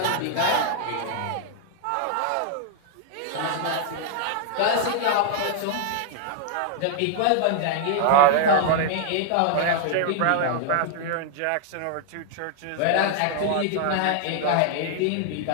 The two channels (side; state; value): both; different; correlation 0.00